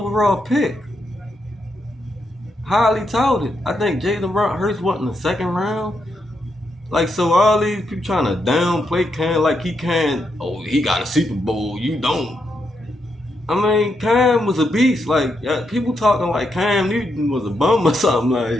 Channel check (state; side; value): normal; both; correlation 0.81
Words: pick. Highly touted. I think Jalen Hurts went in the second round. So all these people trying to downplay Cam he can't, he got a Super Bowl, you don't. I mean, Cam was a beast. People talking like Cam Newton was a bum or